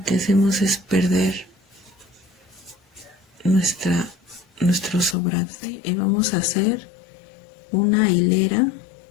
que hacemos es perder nuestro sobrante. Y vamos a hacer una hilera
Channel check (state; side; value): drops out; right; at 5.2 s